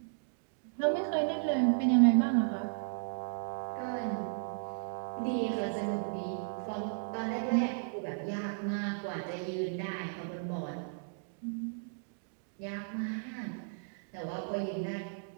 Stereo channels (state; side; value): silent; left; digital silence